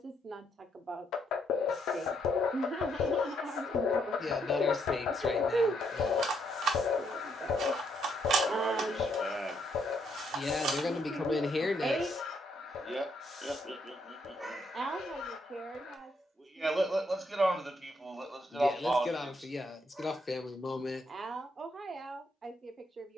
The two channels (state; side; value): normal; both; correlation 0.74